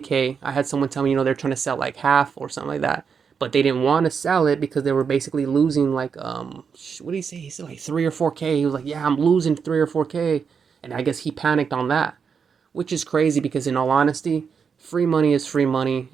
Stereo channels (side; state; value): left; quieter; 6.3 dB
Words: I had someone tell me, they're trying to sell like half or something like that. But they didn't want to sell it because they were basically losing like, what did he say? He said like 3 or 4K. He was like, yeah, I'm losing 3 or 4K. And I guess he panicked on that, which is crazy because in all honesty, free money is free money.